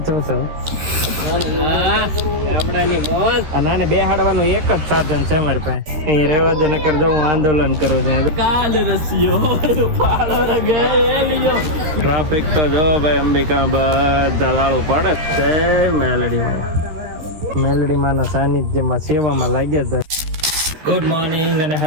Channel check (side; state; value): left; late; 13 ms